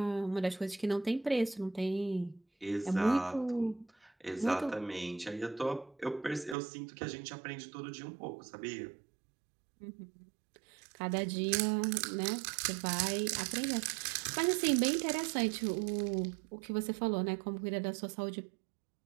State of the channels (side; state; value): left; drops out; at 6.6 s